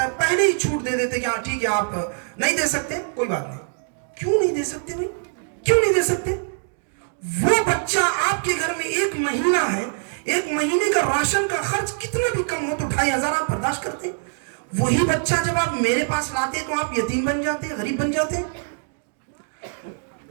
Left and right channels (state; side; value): silent; left; digital silence